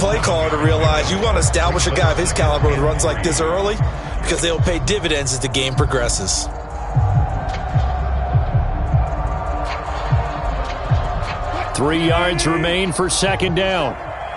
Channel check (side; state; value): both; identical; correlation 1.00